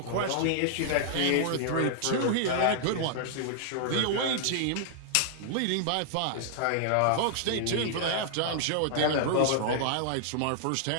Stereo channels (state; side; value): different; both; correlation -0.01